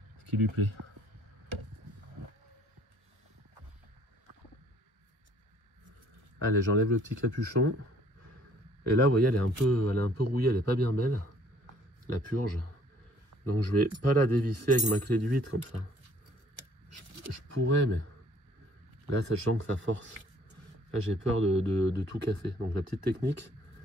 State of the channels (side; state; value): left; late; 1.2 ms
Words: Ce qui lui plaît. Allez, j'enlève le petit capuchon. Et là, vous voyez, elle est un peu rouillée, elle n'est pas bien belle. La purge. Donc je vais pas la dévisser avec ma clé de 8 comme ça. Je pourrais, mais là, sachant que ça force. Là, j'ai peur de tout casser. Donc la petite technique,